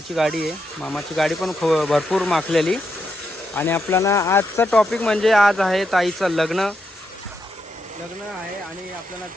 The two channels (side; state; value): both; normal; correlation 0.82